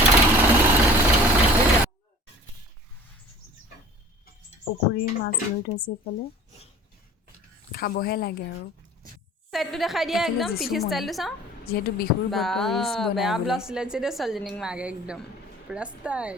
পুখুৰীৰ মাছ ধৰি থৈছে এইফালে, খাবহে লাগে আৰু। সাইডটো দেখাই দিয়া এইফালে একদম পিঠি যিচুমণি, ষ্টাইলটো চাওঁ। যিহেতু বিহুৰ বা বতৰ ৰিলচ বনাই বেয়া বোলে। ব্লাউজ চিলাইছে দেই ছোৱালীজনীক মাকে একদম পুৰা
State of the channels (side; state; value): both; normal; correlation 0.46